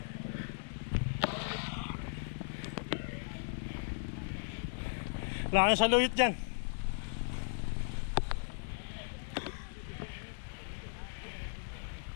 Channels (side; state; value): right; silent; digital silence